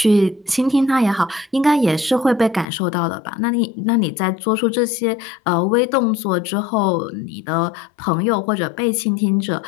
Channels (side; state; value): right; drops out; at 2.7 s